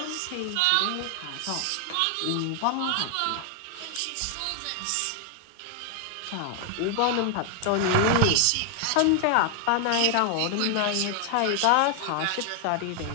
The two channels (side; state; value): both; different; correlation 0.00